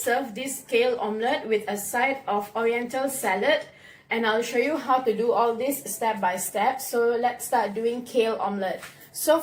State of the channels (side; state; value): both; identical; correlation 1.00